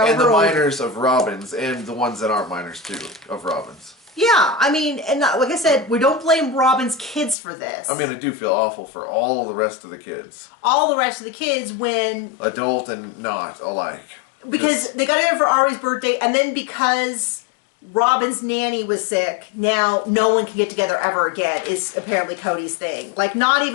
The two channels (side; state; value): right; drops out; at 7.4 s